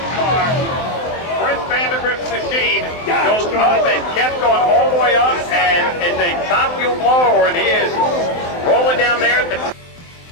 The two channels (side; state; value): right; late; 23 ms